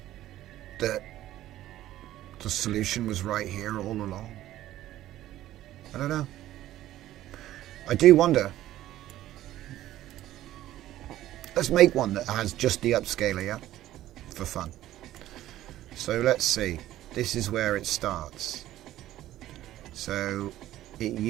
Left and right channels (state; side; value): quieter; left; 14.0 dB